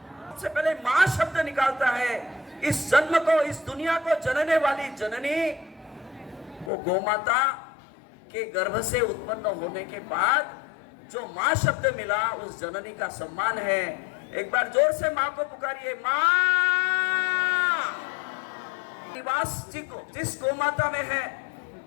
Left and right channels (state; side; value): drops out; right; at 6.7 s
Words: सबसे पहले माँ शब्द निकालता है। इस जन्म को, इस दुनिया को जनने वाली जननी वो गौ माता के गर्भ से उत्पन्न होने के बाद जो माँ शब्द मिला, उस जननी का सम्मान है। एक बार जोर से माँ को पुकारिए, माँ। निवास जी को जिस गौ माता में है,